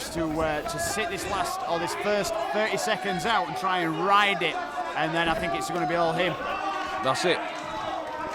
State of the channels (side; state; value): both; identical; correlation 1.00